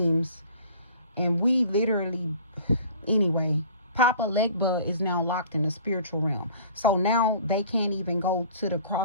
and we literally, anyway, Papa Legba is now locked in the spiritual realm. So now they can't even go to the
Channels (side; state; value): both; inverted; correlation -0.48